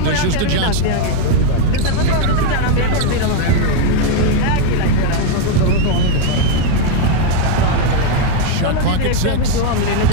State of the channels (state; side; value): different; both; correlation 0.01